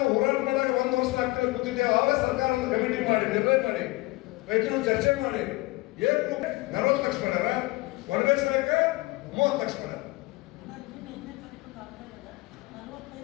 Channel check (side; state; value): right; quieter; 22.6 dB